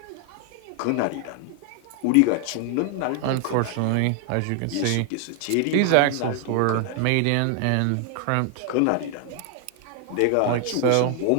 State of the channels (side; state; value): both; different; correlation 0.00